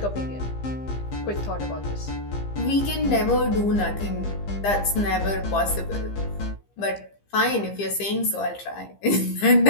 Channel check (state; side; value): late; right; 15 ms